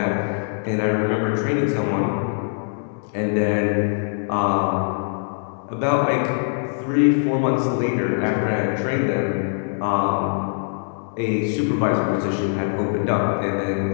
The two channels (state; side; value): silent; right; digital silence